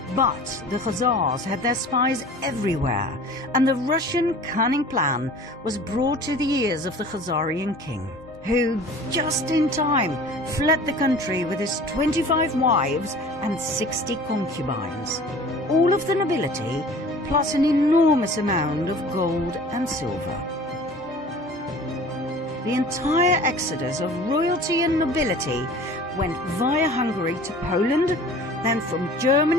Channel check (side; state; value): both; normal; correlation 0.44